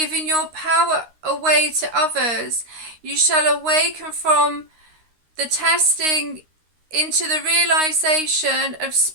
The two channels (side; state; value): left; late; 13 ms